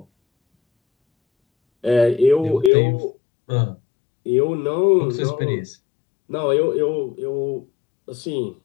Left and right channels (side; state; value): right; drops out; at 2.7 s